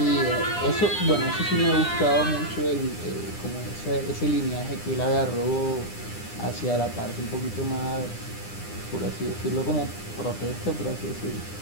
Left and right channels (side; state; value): right; late; 9.9 ms